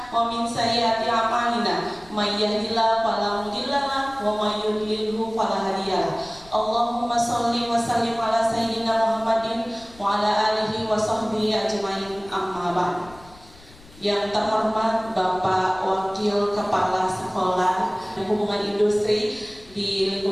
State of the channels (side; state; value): left; noise; rumble, 23 dB below the sound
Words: wa min sayyiati a'malina may yahdihillahu fala mudilla lahu wa may yudlilhu fala hadiya lahu. Allahumma shalli wa sallim ala sayyidina Muhammadin wa ala alihi wa sahbihi ajmain, amma ba'd. Yang terhormat Bapak Wakil Kepala Sekolah Hubungan Industri di